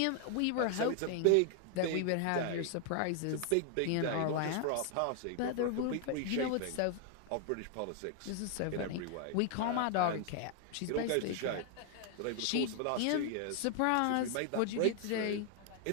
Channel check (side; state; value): both; different; correlation 0.00